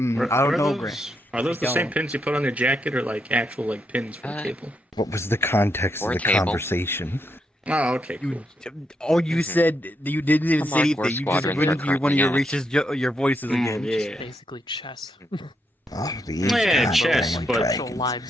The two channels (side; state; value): both; normal; correlation 0.80